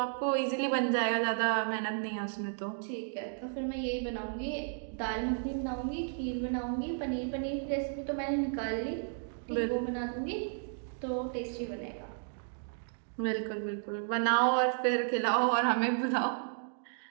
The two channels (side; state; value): left; silent; digital silence